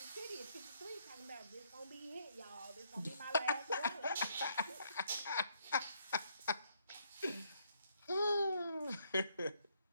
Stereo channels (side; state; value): both; inverted; correlation -0.72